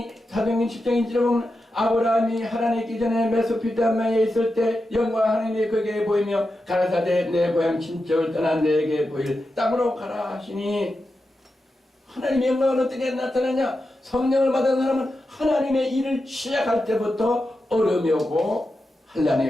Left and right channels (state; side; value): normal; both; correlation 0.90